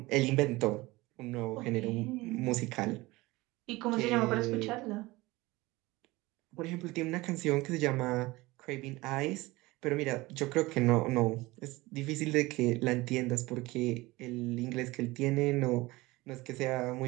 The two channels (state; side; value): quieter; left; 20.8 dB